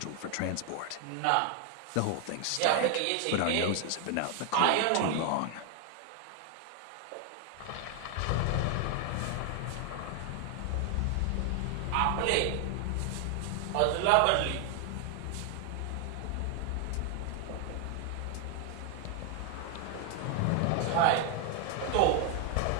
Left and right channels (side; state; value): both; different; correlation 0.00